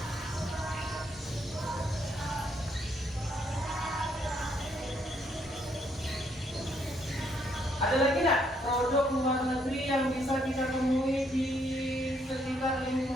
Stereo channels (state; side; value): normal; both; correlation 0.72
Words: Ada lagi nggak produk luar negeri yang bisa kita temui di sekitar